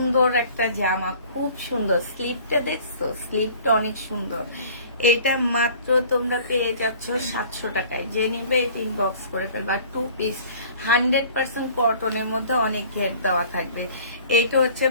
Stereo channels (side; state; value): both; inverted; correlation -0.49